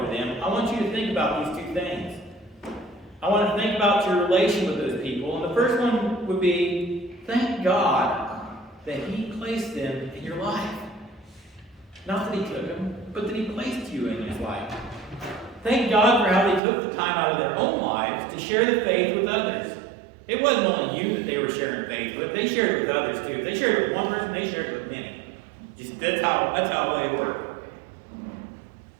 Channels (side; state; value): left; drops out; at 16.6 s